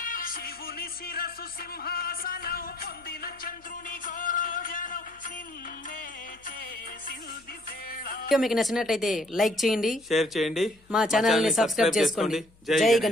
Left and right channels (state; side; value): noise; left; hum, 29 dB below the sound